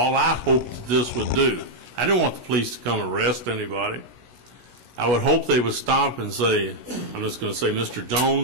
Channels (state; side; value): late; left; 16 ms